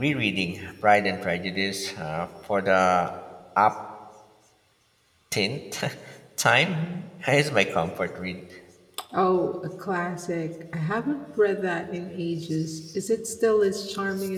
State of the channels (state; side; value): identical; both; correlation 1.00